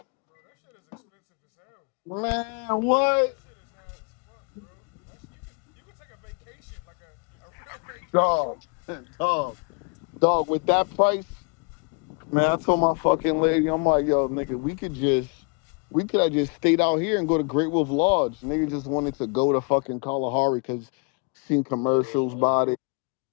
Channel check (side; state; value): right; quieter; 35.2 dB